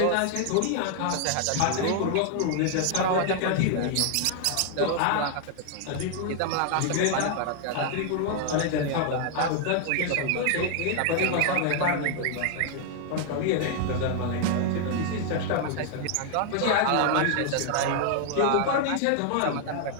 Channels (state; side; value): different; both; correlation 0.00